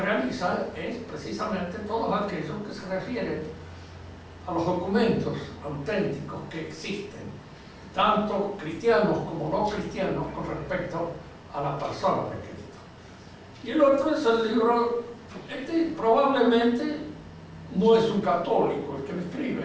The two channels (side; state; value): both; identical; correlation 1.00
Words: es precisamente todos aquellos que se refieren a los documentos auténticos que existen, tanto cristianos como no cristianos, con respecto a la persona de Cristo. Y el otro es el libro, probablemente no es un católico el que lo